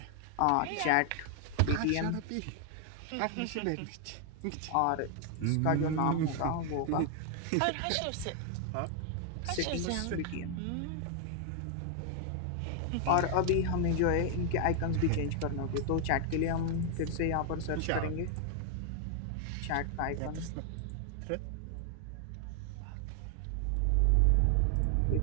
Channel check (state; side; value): different; both; correlation 0.00